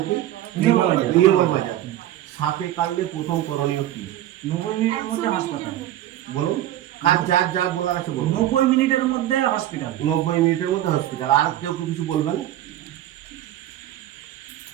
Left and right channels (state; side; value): quieter; left; 13.3 dB